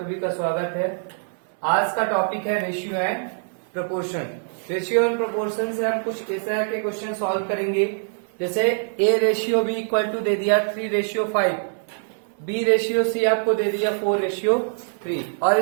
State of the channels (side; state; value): left; silent; 61 dB below the other